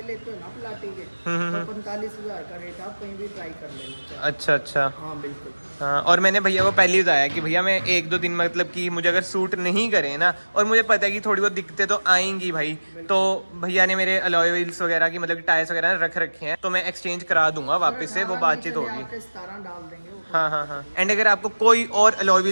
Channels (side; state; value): both; inverted; correlation -1.00